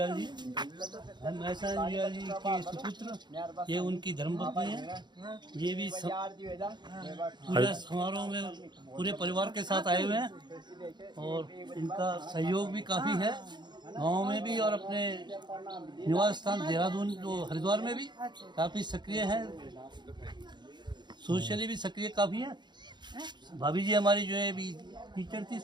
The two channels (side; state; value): left; late; 0.21 ms